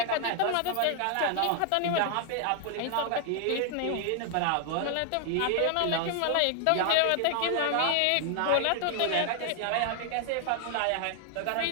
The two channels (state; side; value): different; both; correlation 0.00